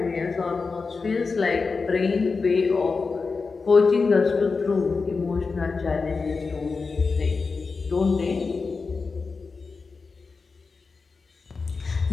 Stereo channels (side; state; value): right; quieter; 4.5 dB